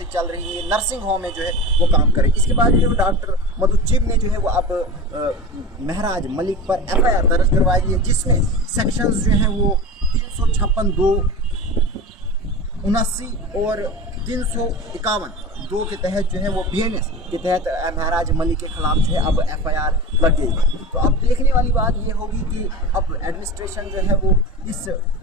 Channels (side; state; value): both; normal; correlation 0.30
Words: चल रही है, नर्सिंग होम में जो है वो काम करें। इसके बाद जो है डॉक्टर मधु चिब ने जो है वो अब महराज मलिक पर FIR दर्ज करवाई है, जिसमें सेक्शंस जो हैं वो 356, 2, 79 और 351 के तहत जो है वो BNS के तहत महराज मलिक के खिलाफ जो है अब FIR लग गई। तो अब देखने वाली बात ये होगी कि अब एडमिनिस्ट्रेशन जो है वो इस